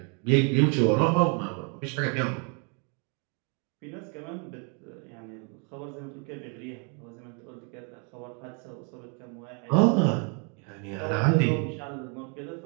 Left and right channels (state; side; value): quieter; left; 37.4 dB